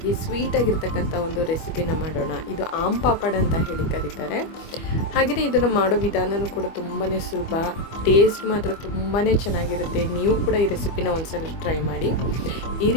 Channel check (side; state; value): right; late; 25 ms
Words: ಸ್ವೀಟಾಗಿರ್ತಕ್ಕಂಥ ಒಂದು ರೆಸಿಪಿನ ಮಾಡೋಣ. ಇದು ಆಮ್ ಪಾಪಡ್ ಅಂತ ಹೇಳಿ ಕರೀತಾರೆ. ಹಾಗೆಯೇ ಇದನ್ನು ಮಾಡೋ ವಿಧಾನವೂ ಕೂಡ ತುಂಬಾ ಸುಲಭ, ಟೇಸ್ಟ್ ಮಾತ್ರ ತುಂಬಾ ಚೆನ್ನಾಗಿರುತ್ತೆ. ನೀವು ಕೂಡ ಈ ರೆಸಿಪಿನ ಒಂದ್ಸಲ ಟ್ರೈ ಮಾಡಿ. ಈ